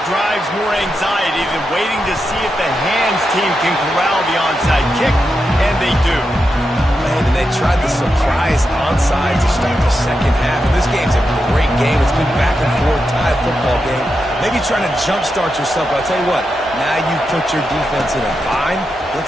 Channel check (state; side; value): normal; both; correlation 0.87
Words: drives more anxiety than waiting to see if the hands team can corral the onside kick, and they do. Man, and they tried the surprise onside to start the second half. And this game's a great game. It's been back and forth, tied football game. Maybe trying to jumpstart yourself. But I'll tell you what, now you put your defense in a bind.